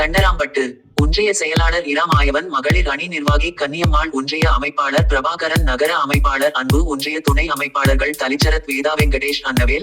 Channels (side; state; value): both; identical; correlation 1.00